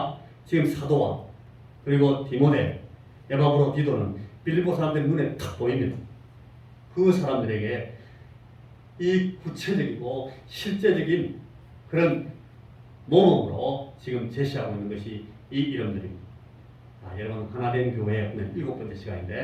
지금 사도와 그리고 디모데, 에바브로디도는 빌립보 사람들의 눈에 탁 보입니다. 그 사람들에게 이 구체적이고 실제적인 그런 모범으로 지금 제시하고 있는 것이 이 이름들입니다. 여러분 하나된 교회 오늘 7번째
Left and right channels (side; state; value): both; identical; correlation 1.00